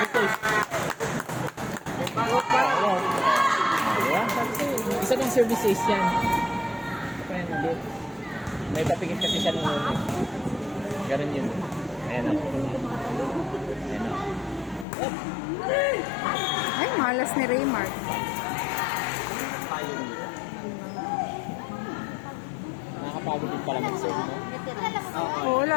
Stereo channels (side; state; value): right; drops out; at 14.9 s